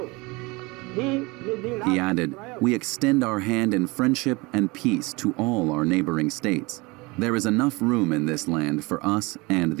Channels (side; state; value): left; quieter; 24.8 dB